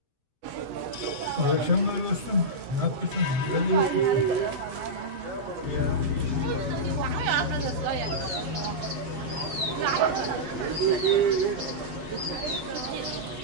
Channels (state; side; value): late; left; 7.9 ms